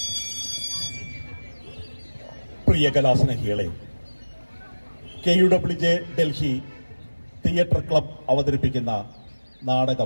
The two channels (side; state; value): both; inverted; correlation -1.00